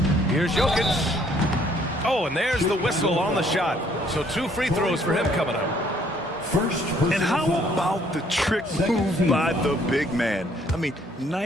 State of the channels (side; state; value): both; normal; correlation 0.63